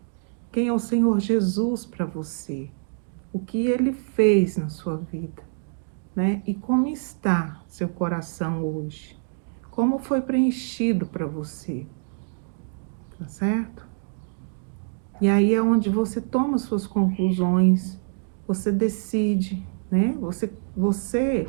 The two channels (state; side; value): silent; left; digital silence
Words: Quem é o Senhor Jesus para você? O que Ele fez na sua vida, né? E como está seu coração hoje? Como foi preenchido para você? Tá certo? E aí é onde você toma suas conclusões, você decide, né? Você